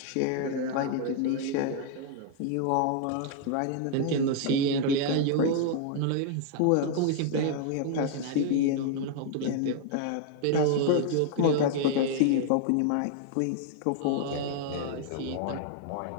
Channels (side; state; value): both; different; correlation 0.00